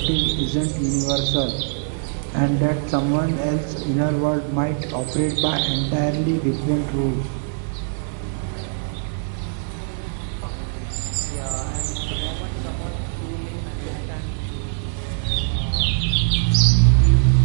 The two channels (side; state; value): left; silent; digital silence